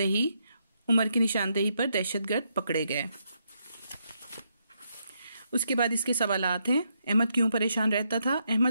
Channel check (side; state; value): both; inverted; correlation -0.79